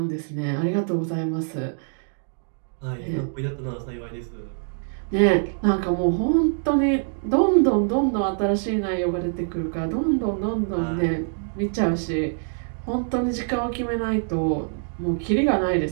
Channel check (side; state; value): left; silent; digital silence